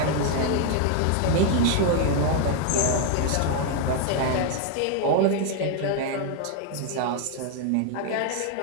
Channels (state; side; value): different; both; correlation 0.00